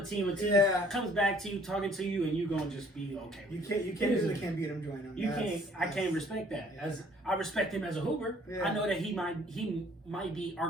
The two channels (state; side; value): normal; both; correlation 0.58